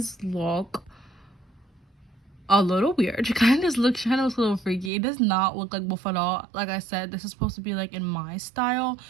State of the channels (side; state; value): left; drops out; at 4.9 s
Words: look a little weird. She kind of looks a little freaky. It does not look like Wolf at all. Like I said, this is supposed to be like in my style.